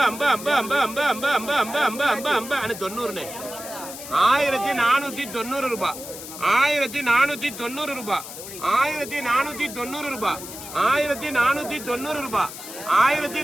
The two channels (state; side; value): noise; left; hiss, 12 dB below the sound